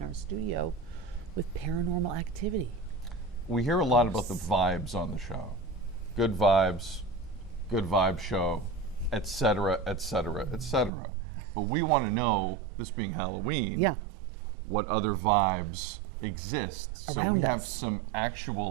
our studio with paranormal activity. We hear a lot about the vibes on the show. Good vibes, good vibe show, et cetera, et cetera, et cetera. But we want to know, this being Halloween, Yeah. what other vibes exist. So Around we have us. some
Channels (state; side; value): drops out; left; at 10.9 s